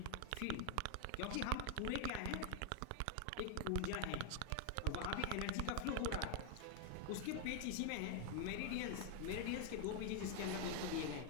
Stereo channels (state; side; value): different; both; correlation 0.00